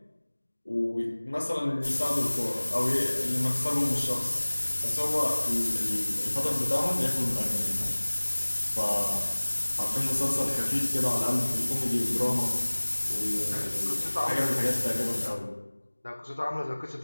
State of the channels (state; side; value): inverted; both; correlation -1.00